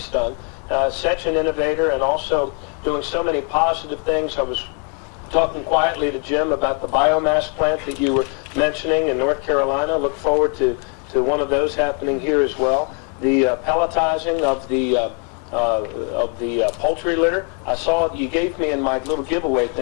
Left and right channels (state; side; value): quieter; right; 39.0 dB